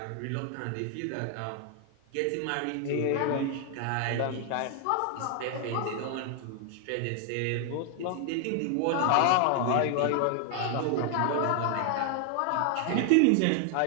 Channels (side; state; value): both; different; correlation 0.00